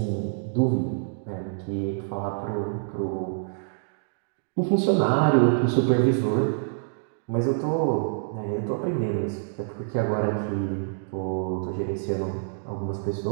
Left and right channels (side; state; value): left; silent; digital silence